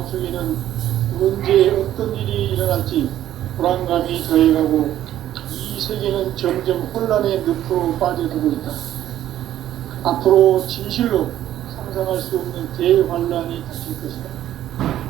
언제 어떤 일이 일어날지 불안감이 더해가고 이 세계는 점점 혼란의 늪으로 빠져들고 있다. 앞으로 진실로 상상할 수 없는 대환란이 닥칠 것이다.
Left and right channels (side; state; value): left; quieter; 12.3 dB